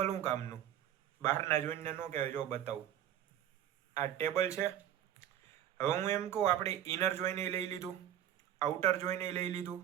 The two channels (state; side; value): quieter; left; 10.9 dB